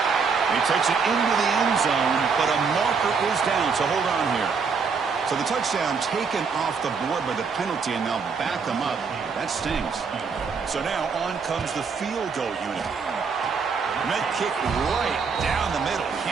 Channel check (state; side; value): quieter; left; 5.5 dB